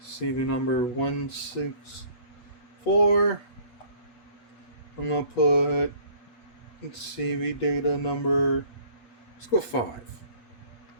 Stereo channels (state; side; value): late; right; 8.4 ms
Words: CV number 164. I'm gonna put CV data number. Let's go 5.